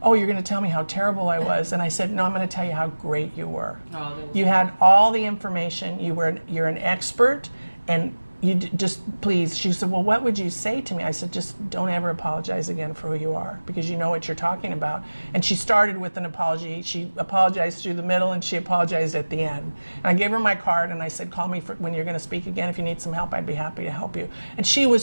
oh, you're going to tell me how terrible I was. And I said, no, I'm going to tell you how great you were. Oh, that was You had all the information. You're an expert, and you just please. She said, well, what would you say to me? I said, just don't ever apologize again for who you are, because you know what you're talking about. And she started with an apology. She apologized through the middle, and she apologized at the end. And I gave her my card, and I said, call me when you're going to speak again. If you need some help, I'd be happy to help you. And she was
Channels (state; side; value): inverted; both; correlation -1.00